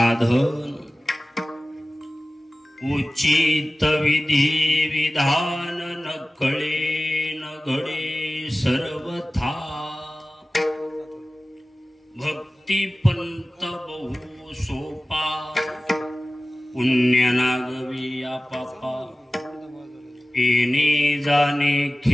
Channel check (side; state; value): both; normal; correlation 0.96